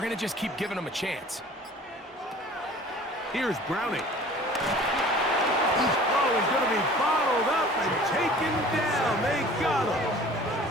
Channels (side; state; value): both; normal; correlation 0.46